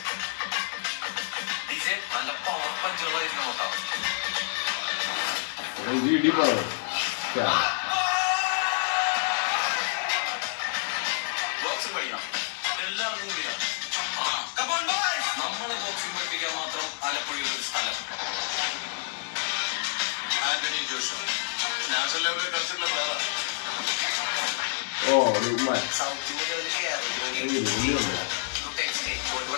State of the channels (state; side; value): silent; right; digital silence